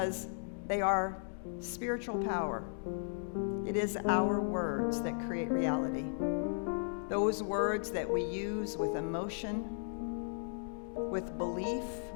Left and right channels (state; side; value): silent; right; digital silence